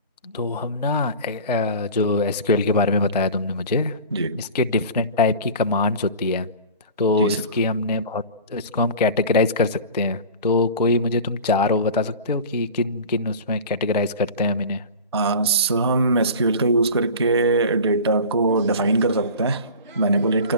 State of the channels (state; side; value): inverted; both; correlation -0.36